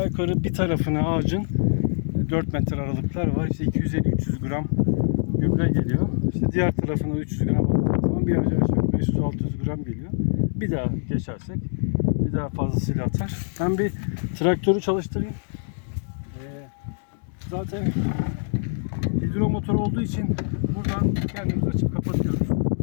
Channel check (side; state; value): right; silent; digital silence